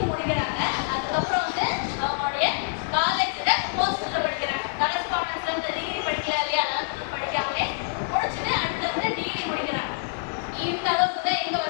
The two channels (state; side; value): silent; right; digital silence